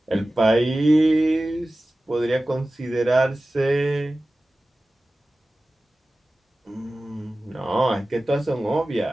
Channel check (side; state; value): both; normal; correlation 0.96